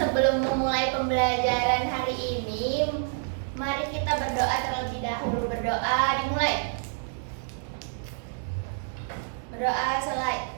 memulai pembelajaran hari ini, mari kita berdoa terlebih dahulu. Berdoa dimulai. Berdoa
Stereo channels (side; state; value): left; silent; digital silence